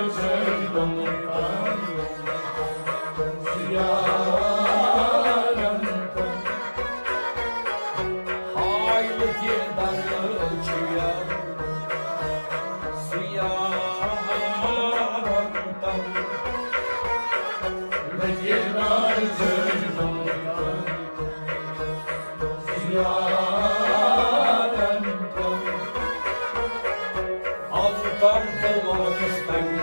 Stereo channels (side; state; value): both; inverted; correlation -1.00